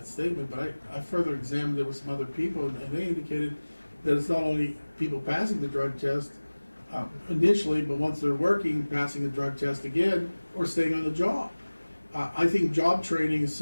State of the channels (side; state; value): both; inverted; correlation -1.00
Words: statement, but I further examined it with some other people, and they indicated that it's not only people passing the drug test initially, but once they're working, passing the drug test again, or staying on the job. I think job training is